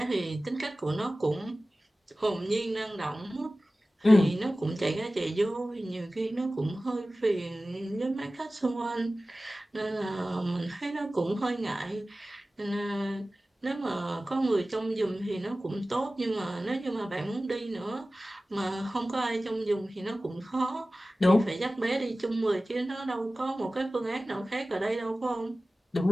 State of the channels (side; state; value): both; normal; correlation 0.96